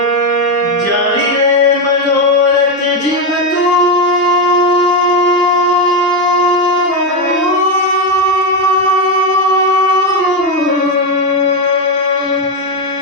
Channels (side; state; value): both; normal; correlation 0.08